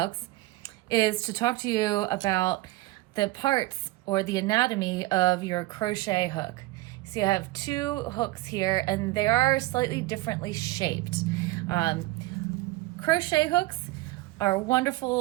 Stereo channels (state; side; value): quieter; left; 19.5 dB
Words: is to talk to you about the parts or the anatomy of your crochet hook. So you have two hooks here and they are slightly differently shaped. Crochet hooks are